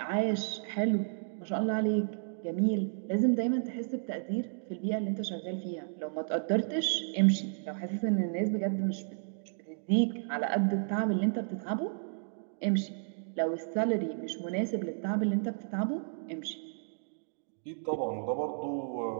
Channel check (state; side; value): silent; left; digital silence